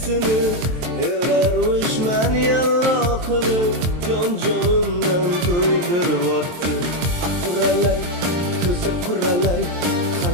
Erarmishman yallo qilib, jonimdan to'ydiryapti. Quralay, ko'zi quralay,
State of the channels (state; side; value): late; left; 23 ms